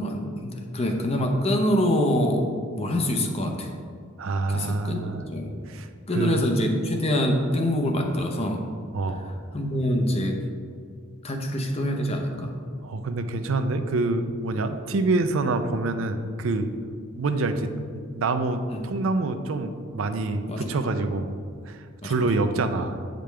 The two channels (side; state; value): both; normal; correlation 0.57